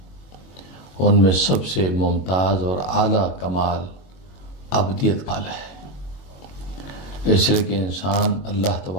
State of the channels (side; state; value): right; late; 22 ms